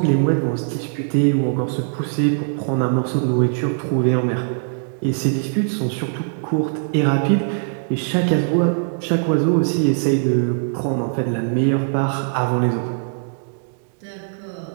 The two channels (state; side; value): silent; left; digital silence